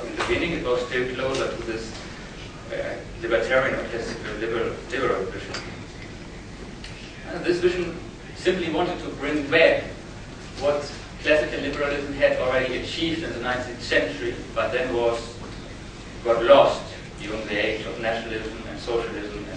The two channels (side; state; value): both; identical; correlation 1.00